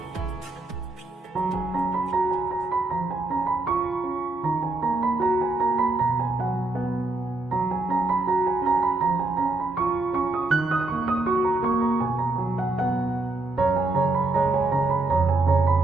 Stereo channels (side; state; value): left; quieter; 3.0 dB